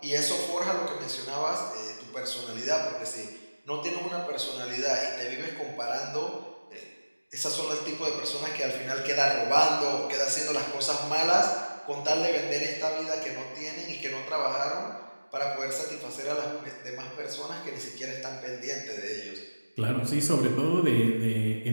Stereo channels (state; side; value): inverted; both; correlation -1.00